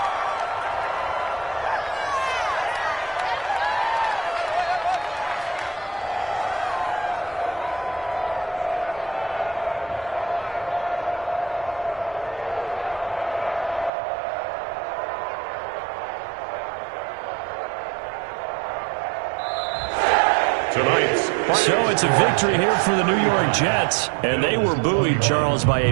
tonight's So it's a victory here for the New York Jets, and they were buoyed, Charles, by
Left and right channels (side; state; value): left; drops out; at 13.9 s